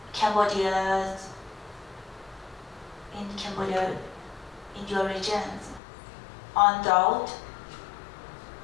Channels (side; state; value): right; drops out; at 5.8 s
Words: Cambodia, in your region on drought